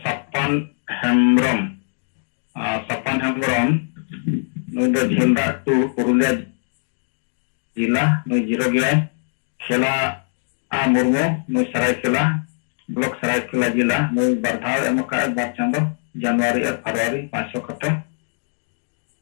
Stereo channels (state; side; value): silent; right; digital silence